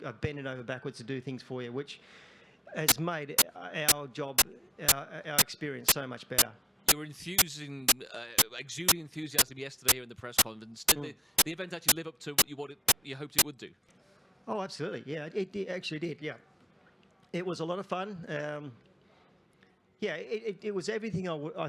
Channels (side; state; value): both; normal; correlation 0.68